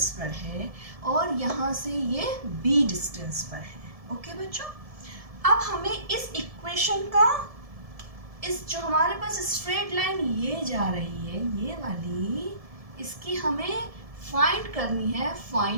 पर है और यहाँ से ये b डिस्टेंस पर है। ओके बच्चों, अब हमें इस इक्वेशन का, इस जो हमारे पास स्ट्रेट लाइन ये जा रही है, ये वाली, इसकी हमें फाइंड करनी है।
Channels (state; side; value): late; left; 1.7 ms